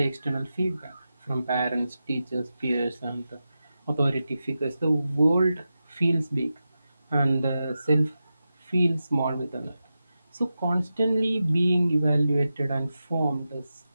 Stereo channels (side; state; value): both; inverted; correlation -0.92